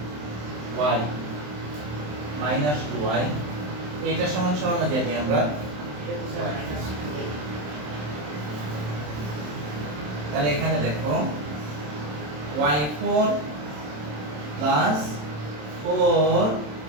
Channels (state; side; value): late; left; 27 ms